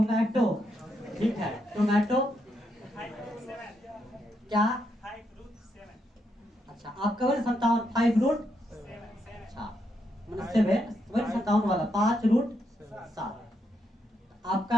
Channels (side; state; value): both; normal; correlation 0.79